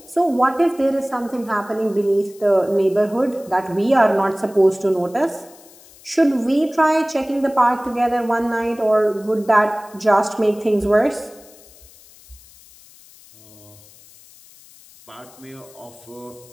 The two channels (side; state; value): left; noise; hiss, 24 dB below the sound